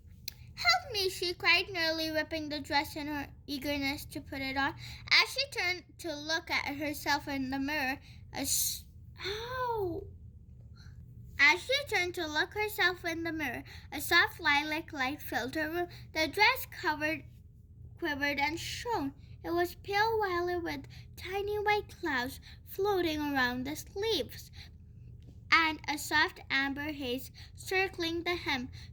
"Help me," she cried, nearly ripping the dress in her eagerness to put it on. As she turned to look at herself in the mirror, a soft lilac light filled her room. The dress quivered and shone. It was pale violet with tiny white clouds floating around the sleeves, and a soft amber haze circling the hem.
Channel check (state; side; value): identical; both; correlation 1.00